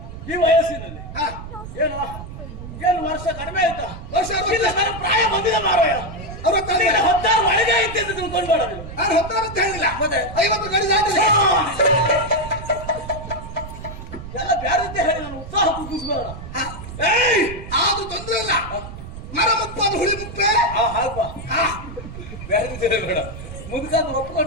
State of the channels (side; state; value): right; noise; rumble, 11 dB below the sound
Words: ಈ ವಯಸ್ಸಿನಲ್ಲಿ ಹಾ, ಏನು ಏನು ವರ್ಷ ಕಡಿಮೆ ಆಯ್ತಾ? ವರ್ಷ ಇಲ್ಲ, ನನ್ನ ಪ್ರಾಯ ಬಂದಿದೆ ಮಾರಾಯ. 16 ಒಳಗೆ ಐತೆ ಅಂತ ತಿಳ್ಕೊಂಡು ಮಾಡೋದಿಲ್ಲ. ನಾನು ಹೊತ್ತಾರ ಅಂತ ಹೇಳಿಲ್ಲ. ಮತ್ತೆ 50 ಗಡಿ ದಾಟಿಲ್ಲ. ಎಲ್ಲ ಬ್ಯಾರತ್ತೆ ಹೇಳಿ ನಾನು ಉತ್ಸಾಹ ಕುಗ್ಗಿಸ್ಬೇಡ. ಅದು ತೊಂದ್ರೆ ಇಲ್ಲ. ಮರ ಮುಪ್ಪು ಅದು ಹುಳಿ ಮುಪ್ಪೆ. ಹಾಗಪ್ಪ, ಬ್ಯಾರತ್ತೆ ಬೇಡ. ಮುದುಕಂದು